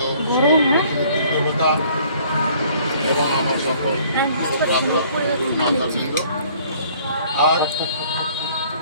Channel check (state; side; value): inverted; both; correlation -0.57